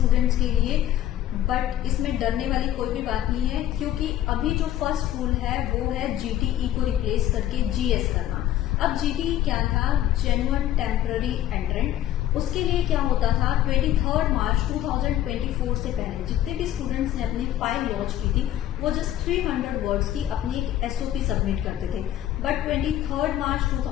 के लिए, बट इसमें डरने वाली कोई भी बात नहीं है, क्योंकि अभी जो फर्स्ट रूल है वो है जीटीई को रिप्लेस करके जीएस करना। अब जीटीई क्या था? Genuine temporary एंट्रेंट। उसके लिए क्या होता था? 23 मार्च 2024 से पहले जितने भी स्टूडेंट्स ने अपनी फाइल लॉन्च की थी वो जस्ट 300 वर्ड्स की अपनी एक एसओपी सबमिट करते थे। बट 23 मार्च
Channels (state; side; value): quieter; right; 12.5 dB